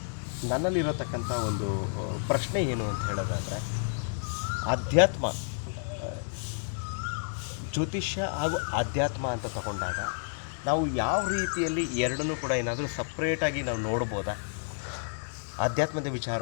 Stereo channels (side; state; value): right; silent; digital silence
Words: ನನ್ನಲ್ಲಿರತಕ್ಕಂಥ ಒಂದು ಪ್ರಶ್ನೆ ಏನು ಅಂತ ಹೇಳೋದಾದರೆ, ಆಧ್ಯಾತ್ಮ, ಜ್ಯೋತಿಷ್ಯ ಹಾಗೂ ಆಧ್ಯಾತ್ಮ ಅಂತ ತಗೊಂಡಾಗ ನಾವು ಯಾವ ರೀತಿಯಲ್ಲಿ ಎರಡನ್ನೂ ಕೂಡ ಏನಾದರೂ ಸಪ್ರೇಟಾಗಿ ನಾವು ನೋಡ್ಬೋದಾ? ಆಧ್ಯಾತ್ಮದ